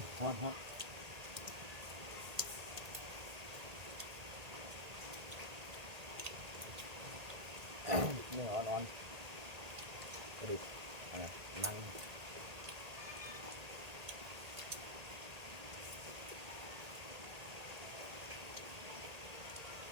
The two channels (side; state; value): left; late; 1.8 ms